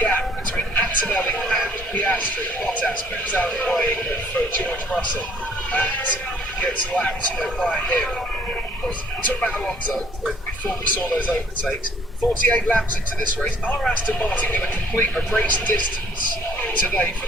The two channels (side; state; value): both; normal; correlation 0.61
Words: between Antonelli and Piastri. Bottas moves out of the way for George Russell and gets lapped by him. We talked about Alonso before we saw those overtakes. 48 laps into this race. Are Aston Martin going to complete a race distance today for